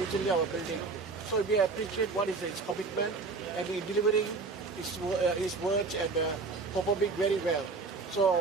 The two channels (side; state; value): left; quieter; 4.2 dB